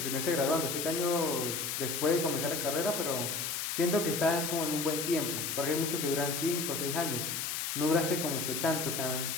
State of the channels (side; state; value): left; noise; hiss, 2 dB below the sound